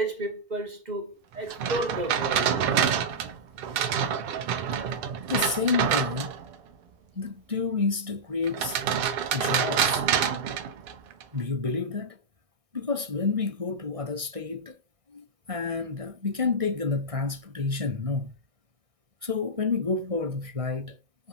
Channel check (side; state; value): left; late; 1.6 ms